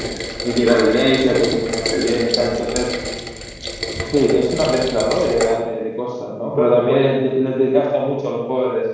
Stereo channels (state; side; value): identical; both; correlation 1.00